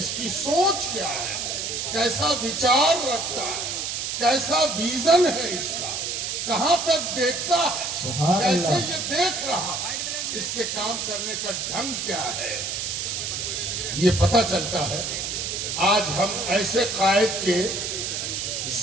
کی سوچ کیا ہے، کیسا وچار رکھتا ہے، کیسا ویژن ہے اس کا، کہاں تک دیکھتا ہے، سبحان کیسے اللہ۔ یہ دیکھ رہا ہے، اس کے کام کرنے کا ڈھنگ کیا ہے، یہ پتہ چلتا ہے۔ آج ہم ایسے قائد کے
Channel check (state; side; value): noise; right; hiss, 3 dB below the sound